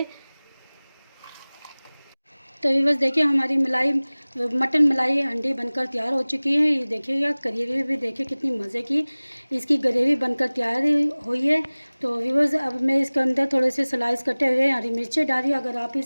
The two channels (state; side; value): inverted; both; correlation -1.00